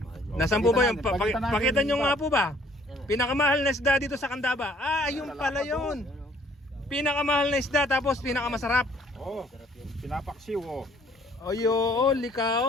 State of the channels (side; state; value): both; normal; correlation 0.60